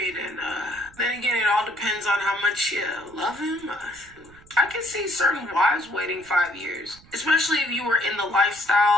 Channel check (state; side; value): noise; right; rumble, 25 dB below the sound